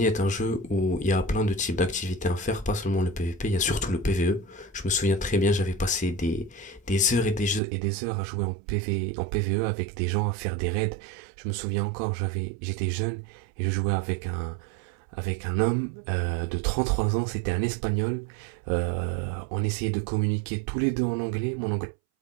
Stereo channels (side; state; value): left; drops out; at 7.6 s